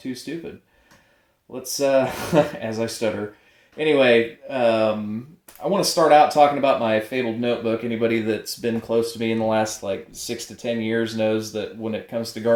stupid. Let's as I stutter. Anyway, I want to start out talking about my fabled notebook. Anybody that's been close to me in the last like 6 to 10 years knows that when it comes to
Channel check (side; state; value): both; identical; correlation 1.00